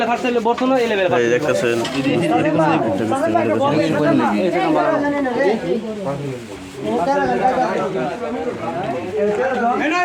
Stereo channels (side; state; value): both; identical; correlation 1.00